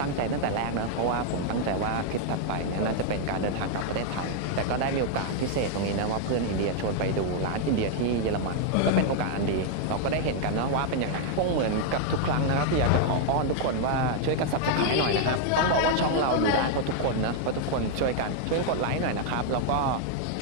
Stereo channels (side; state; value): both; different; correlation 0.00